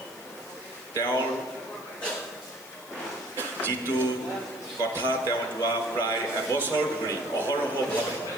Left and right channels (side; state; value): left; noise; hiss, 19 dB below the sound